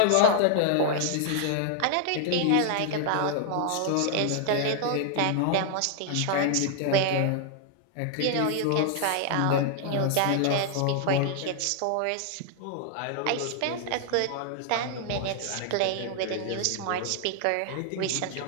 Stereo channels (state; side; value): different; both; correlation 0.00